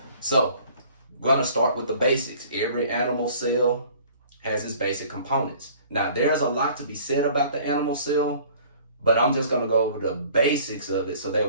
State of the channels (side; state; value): both; inverted; correlation -0.52